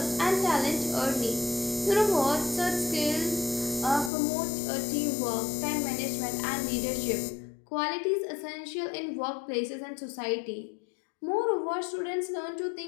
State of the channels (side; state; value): right; drops out; at 4.1 s